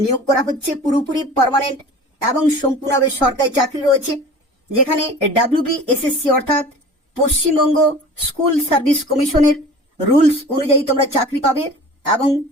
নিয়োগ করা হচ্ছে। পুরোপুরি পার্মানেন্ট এবং সম্পূর্ণভাবে সরকারি চাকরি রয়েছে, যেখানে WBSSC অর্থাৎ পশ্চিমবঙ্গ স্কুল সার্ভিস কমিশনের রুলস অনুযায়ী তোমরা চাকরি পাবে এবং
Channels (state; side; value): normal; both; correlation 0.41